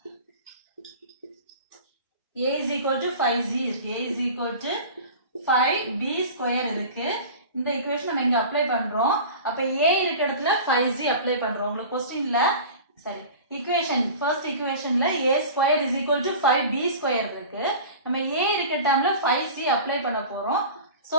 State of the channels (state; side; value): inverted; both; correlation -0.37